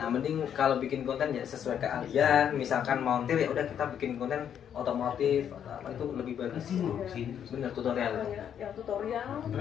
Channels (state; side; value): quieter; right; 9.0 dB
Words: mending kalau bikin konten ya sesuai keahlian, misalkan montir ya udah kita bikin konten otomotif atau apa itu lebih bagus. Bener tutorial. Ya tutorial